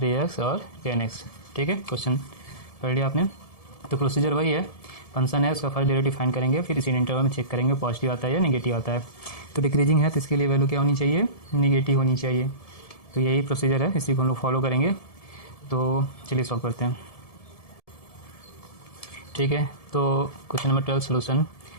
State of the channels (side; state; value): right; late; 1.7 ms